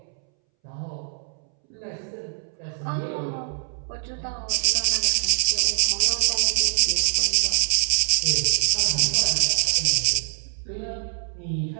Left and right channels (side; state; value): left; silent; 63 dB below the other